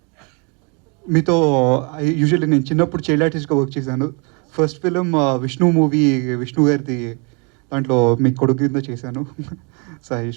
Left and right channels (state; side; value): quieter; left; 33.6 dB